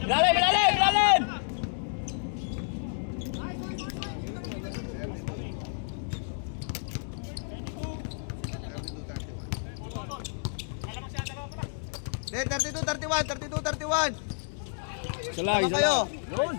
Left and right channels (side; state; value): right; silent; digital silence